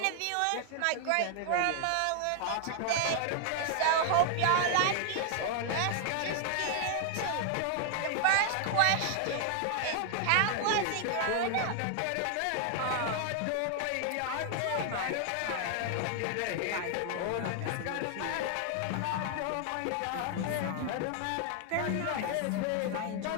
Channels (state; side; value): different; both; correlation 0.00